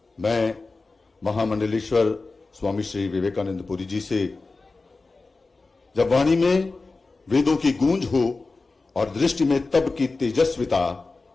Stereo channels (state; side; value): quieter; right; 3.7 dB